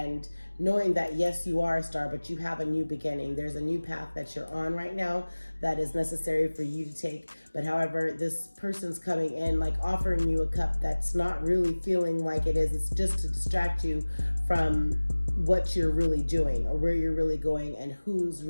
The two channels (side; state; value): both; inverted; correlation -1.00